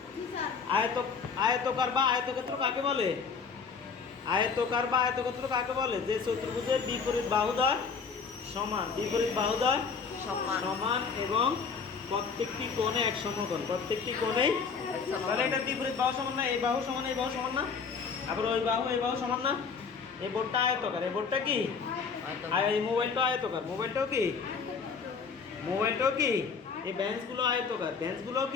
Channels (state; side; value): quieter; right; 5.5 dB